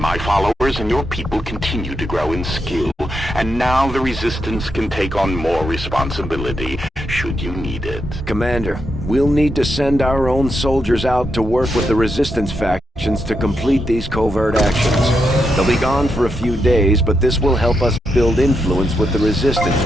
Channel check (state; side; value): normal; both; correlation 0.83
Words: followers and your people continue to grow in skill, and now the Resistance can take on more responsibility, should you need it. Commander, we'll need to send our own soldiers out to work with the Resistance factions to complete these covert actions. They'll be gone for a few days, but this will help us build influence with the Resistance